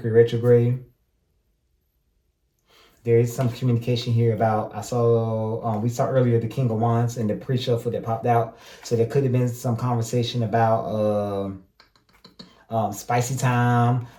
retrograde. There is some communication here about, we saw earlier the King of Wands and the pre-shuffle that popped out. So there could have been some conversation about spicy time.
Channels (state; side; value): identical; both; correlation 1.00